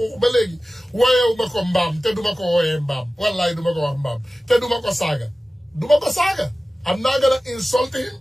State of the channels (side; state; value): both; normal; correlation 0.96